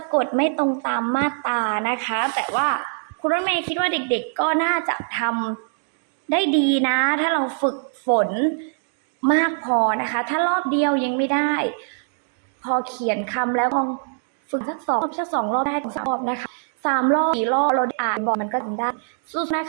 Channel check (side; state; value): left; silent; digital silence